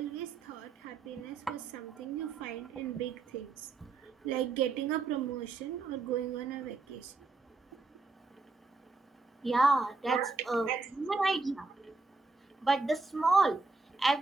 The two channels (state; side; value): quieter; left; 3.8 dB